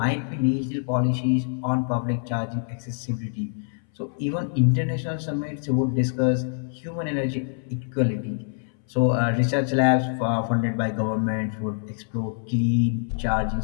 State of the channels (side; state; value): right; silent; 61 dB below the other